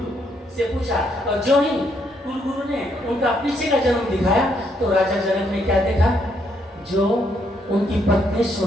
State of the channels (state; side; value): normal; both; correlation 0.73